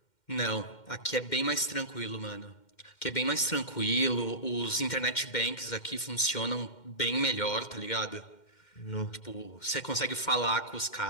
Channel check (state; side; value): late; right; 2.1 ms